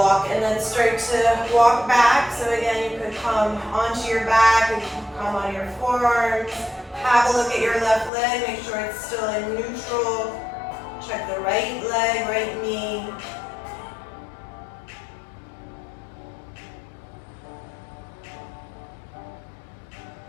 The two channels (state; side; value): drops out; right; at 8.1 s